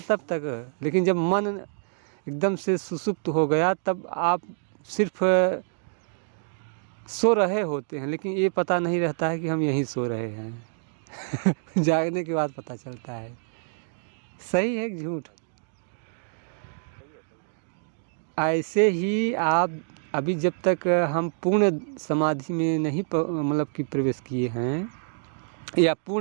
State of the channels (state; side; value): silent; left; digital silence